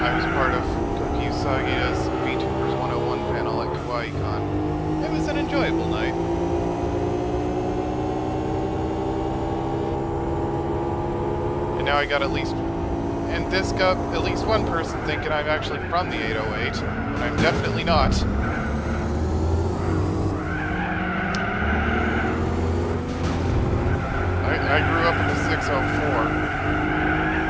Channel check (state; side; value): identical; both; correlation 1.00